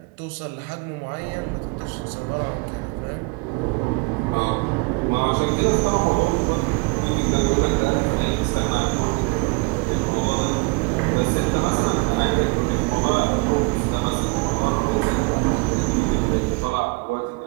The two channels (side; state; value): left; quieter; 28.1 dB